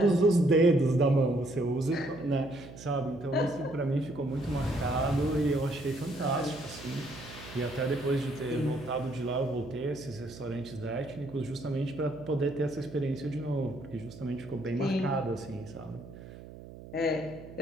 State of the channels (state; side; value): noise; right; hum, 15 dB below the sound